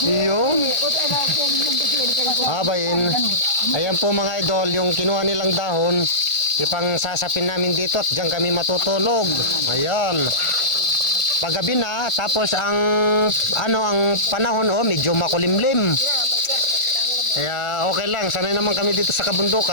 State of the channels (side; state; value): right; late; 1.4 ms